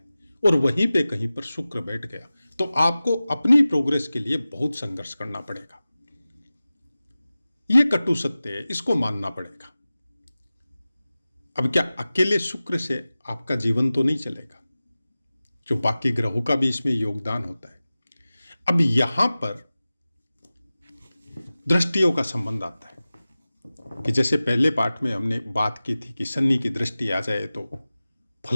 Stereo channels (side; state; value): both; inverted; correlation -0.97